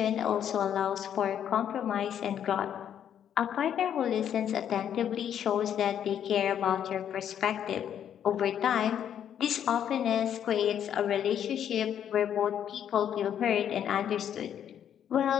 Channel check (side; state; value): right; quieter; 9.4 dB